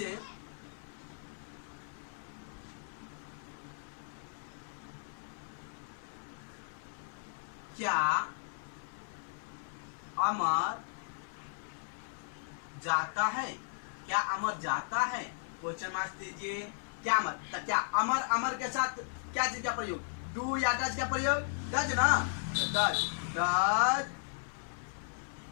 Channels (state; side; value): silent; right; 54 dB below the other